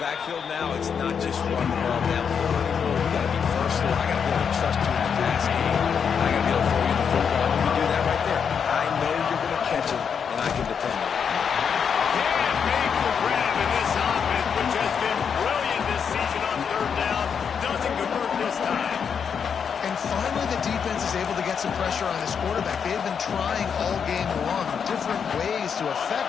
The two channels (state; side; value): quieter; right; 6.9 dB